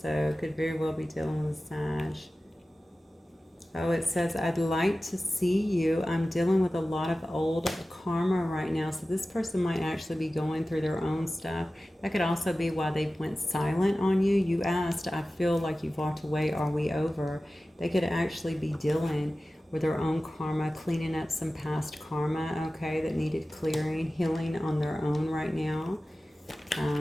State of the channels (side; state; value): both; normal; correlation 0.96